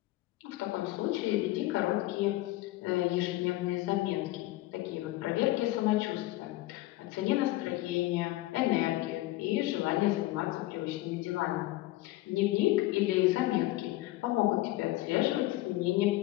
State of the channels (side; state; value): right; quieter; 17.5 dB